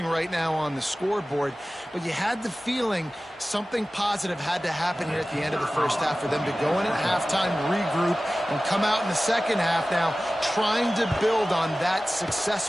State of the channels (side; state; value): both; normal; correlation 0.96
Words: right now on the scoreboard, but you had the feeling something positive had to happen here at the end of the first half for them to go in at halftime, regroup, and come out in the second half now trying to build on that